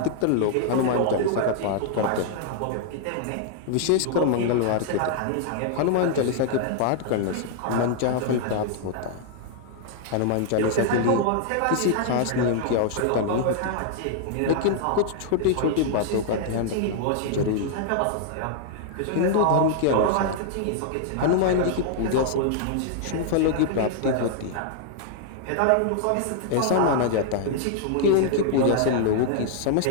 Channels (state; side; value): different; both; correlation -0.01